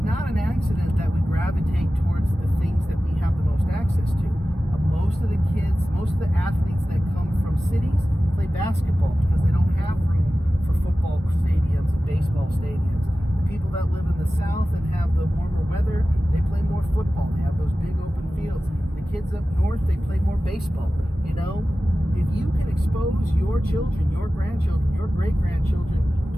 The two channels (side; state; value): both; normal; correlation 0.95